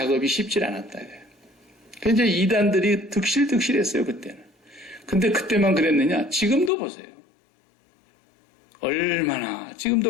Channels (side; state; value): right; drops out; at 6.7 s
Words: 쉽지 않았다. 그래서 이단들이 득실득실했어요 그때는. 근데 그때만 그랬느냐? 지금도 보세요. 얼마나